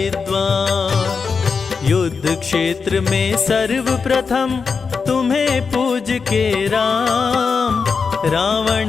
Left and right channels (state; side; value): quieter; right; 5.3 dB